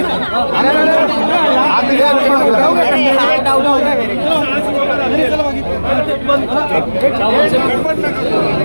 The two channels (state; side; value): inverted; both; correlation -1.00